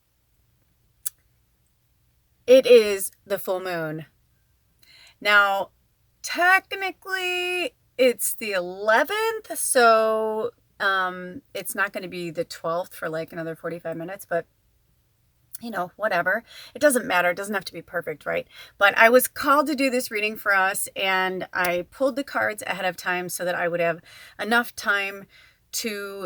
it is the full moon. Now, technically it's the 11th, so it's not going to be the 12th for another 45 minutes, but whatever. It doesn't matter. It doesn't have to be perfect, right? But I was called to do this reading for us, and I pulled the cards ahead of time so that I would have enough time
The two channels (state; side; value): identical; both; correlation 1.00